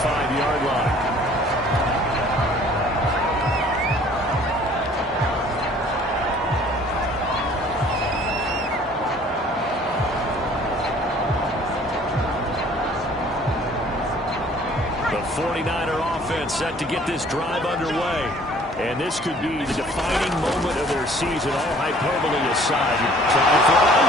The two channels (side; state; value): both; normal; correlation 0.54